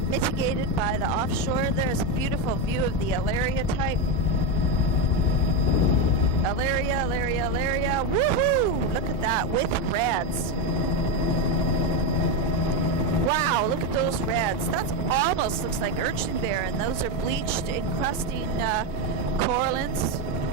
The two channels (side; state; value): both; normal; correlation 0.11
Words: mitigated by the offshore. There's a beautiful view of the Alaria type. Alaria, woohoo! Look at that, with reds. Wow, look at those reds. That almost looks like urchinbear, and those are bleached, encrusting corallines.